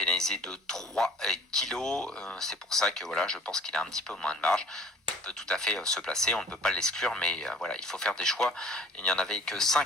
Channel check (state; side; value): normal; both; correlation 0.50